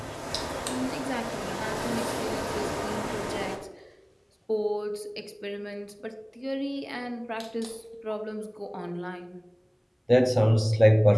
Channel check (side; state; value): both; identical; correlation 1.00